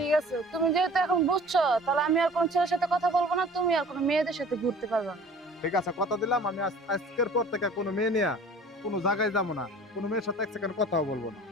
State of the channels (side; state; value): both; normal; correlation 0.46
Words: আছে, তুমি যেহেতু এখন বুঝছো, তাহলে আমি আর কোন ছেলের সাথে কথা বলবো না, তুমি আর কোনো মেয়েদের সাথে ঘুরতে পারবে না। ঠিক আছে, কথা দিলাম আমি আজকের পর থেকে কোনো মেয়ে নিয়ে কোনো জায়গায় যাবো না, কোনো মেয়ের সাথে এক সেকেন্ড কথাও বলবো না।